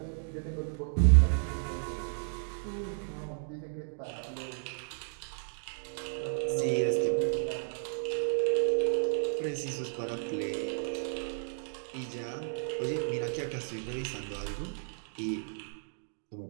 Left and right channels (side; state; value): left; silent; digital silence